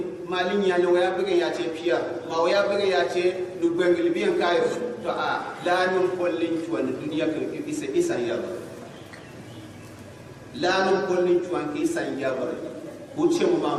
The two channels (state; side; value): identical; both; correlation 1.00